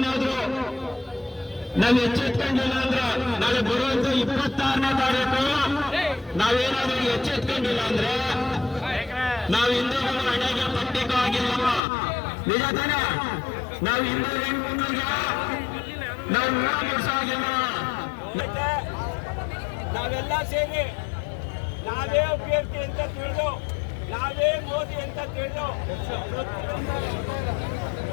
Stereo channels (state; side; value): drops out; right; at 11.8 s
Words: ನಾವು ಎಚ್ಚೆತ್ಕೊಂಡಿಲ್ಲ ಅಂದ್ರೆ ನಾಳೆ ಬರುವಂತ 26ನೇ ತಾರೀಕು ನಾವೇನಾದ್ರೂ ಎಚ್ಚೆತ್ಕೊಂಡಿಲ್ಲ ಅಂದ್ರೆ ನಾವು ಹಿಂದೂಗಳು ಹಣೆಗೆ ಪಟ್ಟಿಗೂ ಆಗಿಲ್ಲ. ನಿಜ ತಾನೆ? ನಾವು ಹಿಂದೂ ಹೆಣ್ಮಕ್ಳಿಗೆ ನಾವು ಮುಗಿಸಾಗಿಲ್ಲ. ನಾವೆಲ್ಲ ಸೇರಿ ನಾವೇ ಅಭ್ಯರ್ಥಿ ಅಂತ ತಿಳಿದು, ನಾವೇ ಮೋದಿ ಅಂತ ತಿಳಿದು